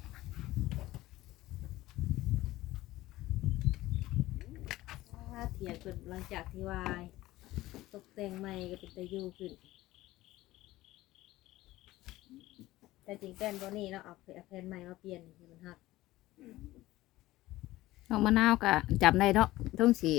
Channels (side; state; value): right; quieter; 17.0 dB